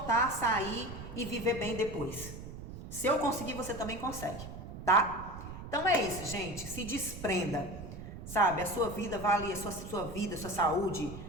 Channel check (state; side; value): noise; right; rumble, 10 dB below the sound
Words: sair e viver bem depois. Se eu conseguir, você também consegue, tá? Então é isso, gente. Se desprenda. Sabe, a sua vida vale, a sua vida, sua saúde,